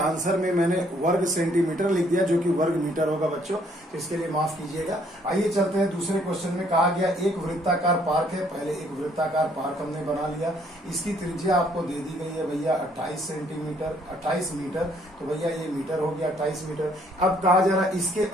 आंसर में मैंने वर्ग सेंटीमीटर लिख दिया जो कि वर्ग मीटर होगा बच्चों, तो इसके लिए माफ कीजिएगा। आइए चलते हैं दूसरे क्वेश्चन में। कहा गया एक वृत्ताकार पार्क है, पहले एक वृत्ताकार पार्क हमने बना लिया, इसकी त्रिज्या आपको दे दी गई है भैया 28 मीटर, तो भैया ये मीटर हो गया 28 मीटर। अब कहा जा रहा है इसके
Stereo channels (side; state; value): both; normal; correlation 0.65